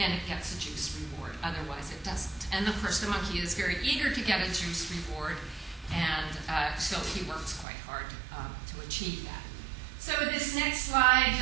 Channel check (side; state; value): left; drops out; at 7.7 s